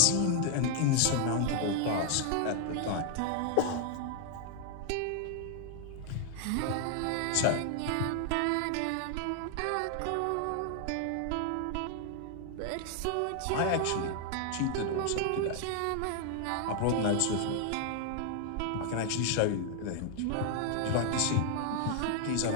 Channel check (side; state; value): both; different; correlation 0.00